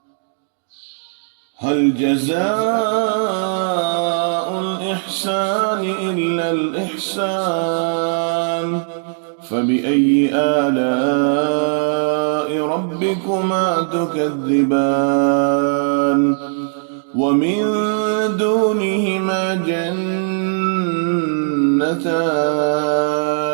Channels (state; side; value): silent; left; digital silence